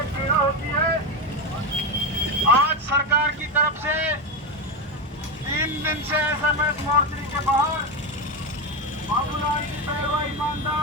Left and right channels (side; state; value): both; normal; correlation 0.13